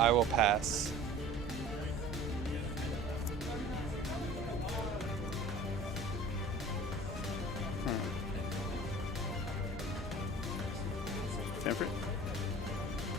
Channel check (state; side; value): normal; both; correlation 0.43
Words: will pass. Stanford?